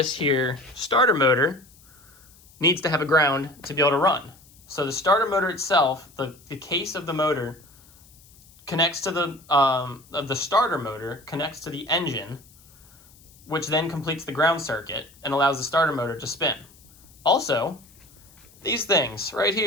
here starter motor needs to have a ground to be able to run. So the starter motor itself, the case of the motor connects to the starter motor connects to the engine, which then completes the ground circuit and allows the starter motor to spin. Also, these things right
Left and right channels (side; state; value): left; noise; hiss, 26 dB below the sound